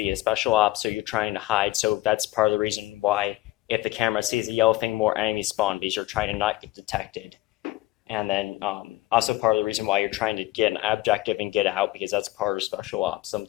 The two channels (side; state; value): right; quieter; 17.6 dB